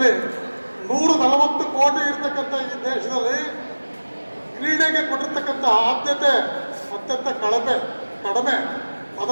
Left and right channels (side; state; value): both; inverted; correlation -1.00